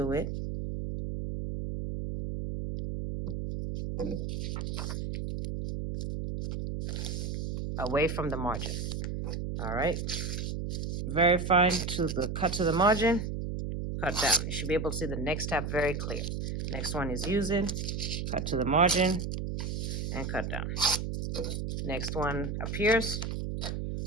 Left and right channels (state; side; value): noise; right; hum, 3 dB below the sound